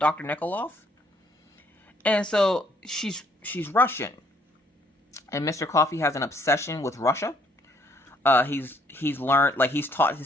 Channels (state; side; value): normal; both; correlation 0.65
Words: Nikoloff. And so she's Russian. And Mr. Coffee has an obsession with Russia. He's learned, like, he's taught